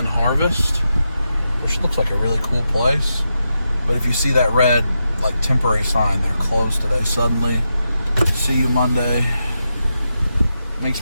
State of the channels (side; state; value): both; inverted; correlation -0.87